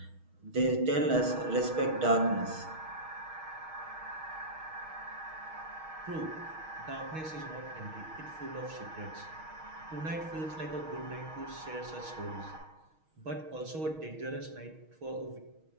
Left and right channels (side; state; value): left; late; 6.3 ms